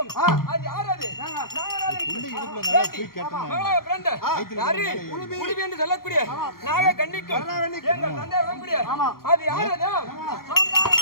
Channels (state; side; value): late; right; 0.93 ms